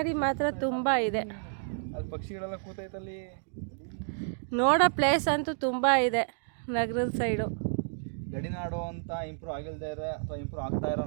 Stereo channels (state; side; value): silent; left; digital silence